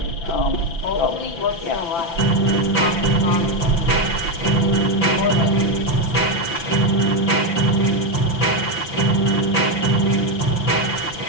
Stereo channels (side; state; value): right; late; 5.9 ms